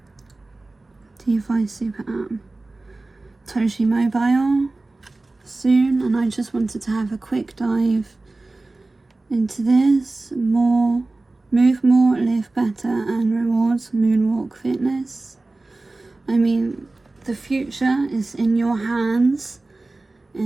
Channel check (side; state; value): left; quieter; 3.1 dB